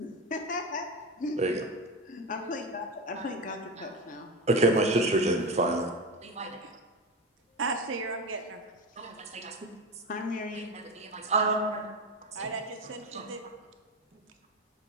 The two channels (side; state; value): both; normal; correlation 0.21